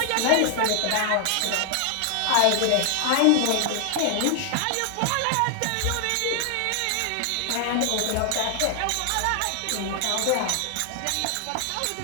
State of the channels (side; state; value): both; different; correlation 0.00